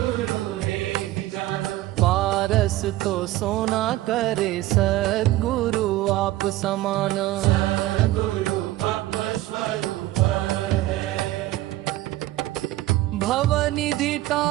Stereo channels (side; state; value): left; quieter; 16.1 dB